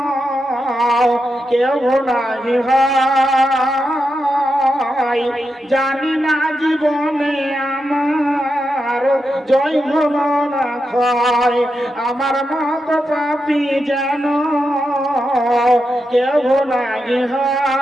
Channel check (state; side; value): normal; both; correlation 0.87